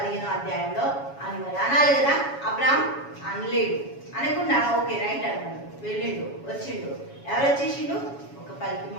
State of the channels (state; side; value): late; right; 7.2 ms